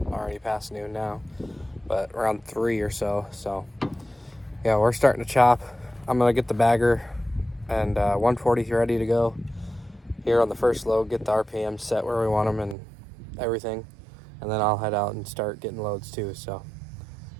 already past noon now, but around 3 or so. So yeah, we're starting to chop. I'm gonna get the bagger and 140 ready to go here on the first load, get the RPM set where we want them and everything, and then I'll head out and start getting loads too. So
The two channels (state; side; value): drops out; left; at 12.8 s